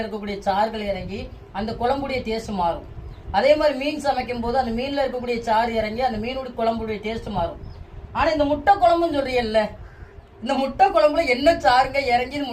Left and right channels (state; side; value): identical; both; correlation 1.00